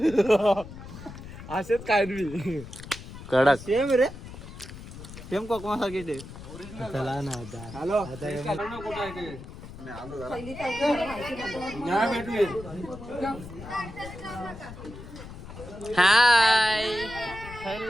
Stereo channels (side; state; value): left; noise; rumble, 13 dB below the sound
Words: असेच काय मी कडक. सेम रे. सेम कोकमा सारखी ते. चला ना आता. हॅलो हाय